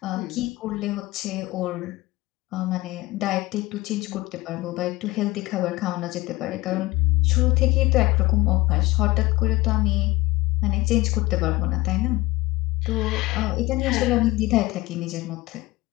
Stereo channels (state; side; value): quieter; right; 19.9 dB